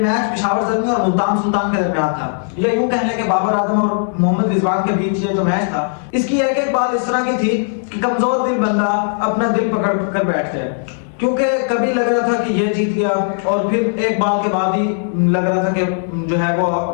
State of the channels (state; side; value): silent; right; digital silence